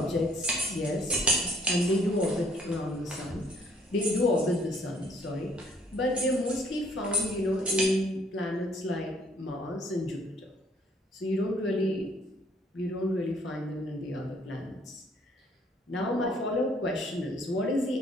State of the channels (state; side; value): normal; both; correlation 0.62